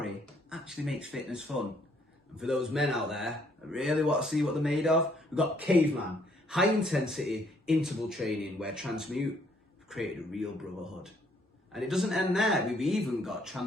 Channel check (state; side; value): normal; both; correlation 0.67